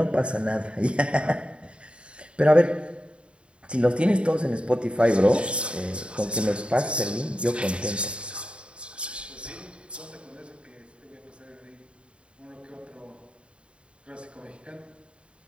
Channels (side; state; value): left; late; 0.057 ms